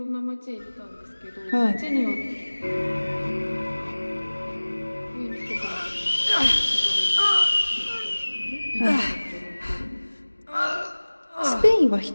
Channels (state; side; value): inverted; both; correlation -1.00